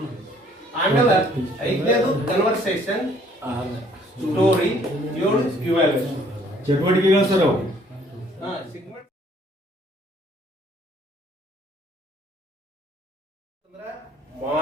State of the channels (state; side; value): normal; both; correlation 0.61